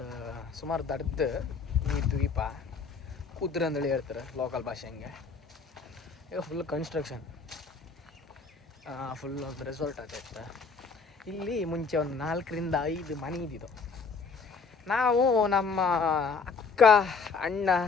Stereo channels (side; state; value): right; quieter; 5.0 dB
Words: ಸುಮಾರು ದಡ್ದು ಈ ದ್ವೀಪ, ಕುದ್ರೆ ಅಂದೇಳಿ ಹೇಳ್ತಾರೆ ಲೋಕಲ್ ಭಾಷೆ. ಹಂಗೆ ಈಗ ಫುಲ್ ಕನ್ಸ್ಟ್ರಕ್ಷನ್, ಫುಲ್ ಒಂದು ರೆಸಾರ್ಟ್ ಆಗೈತೆ. ಇಲ್ಲಿ ಮುಂಚೆ ಒಂದು 4ರಿಂದ 5 ಮನೆ ಇದ್ದಿದ್ದು. ನಾವು ನಮ್ಮ ಅಕ್ಕ ಅಣ್ಣ